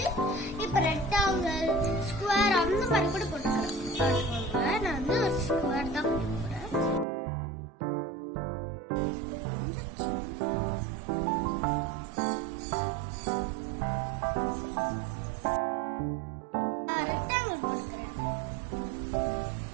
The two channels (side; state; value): left; drops out; at 7.1 s